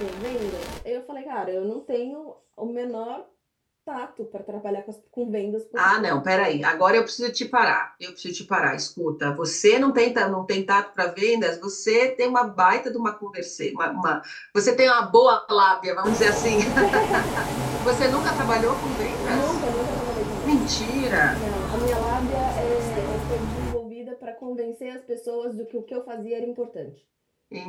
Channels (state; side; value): identical; both; correlation 1.00